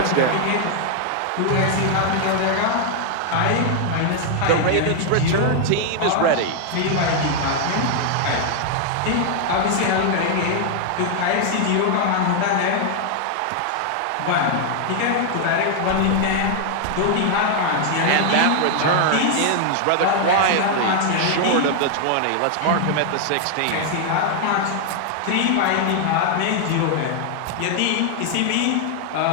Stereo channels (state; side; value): different; both; correlation 0.00